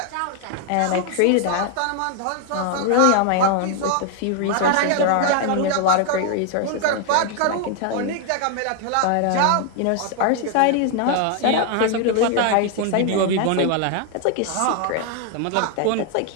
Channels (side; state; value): both; different; correlation 0.00